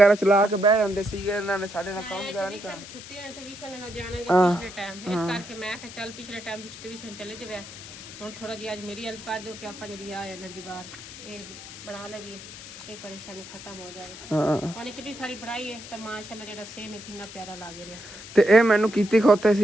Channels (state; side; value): noise; left; hiss, 14 dB below the sound